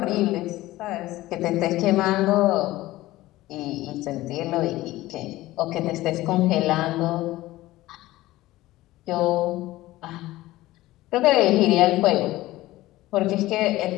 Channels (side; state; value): right; quieter; 17.2 dB